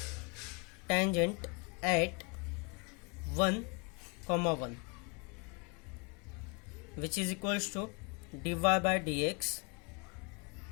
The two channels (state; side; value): quieter; right; 32.4 dB